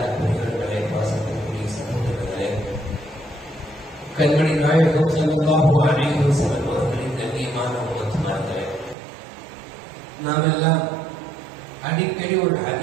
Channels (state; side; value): drops out; left; at 9.0 s